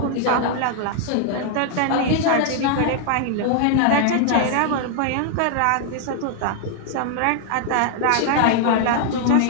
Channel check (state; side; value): different; both; correlation 0.00